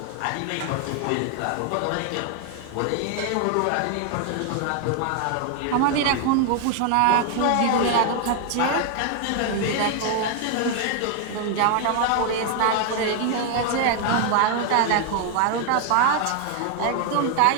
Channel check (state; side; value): different; both; correlation 0.00